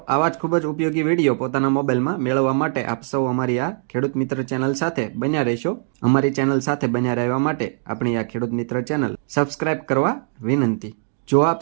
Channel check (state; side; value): silent; left; 59 dB below the other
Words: આવા જ ખૂબ જ ઉપયોગી વિડીયો પોતાના મોબાઈલમાં મેળવવા માટે આપ સૌ અમારી આ ખેડૂત મિત્ર ચેનલ સાથે બન્યા રહેશો। અમારી ચેનલ સાથે બન્યા રહેવા માટે આપણી આ ખેડૂત મિત્ર ચેનલ સબસ્ક્રાઇબ કરવા વિનંતી। જો આપ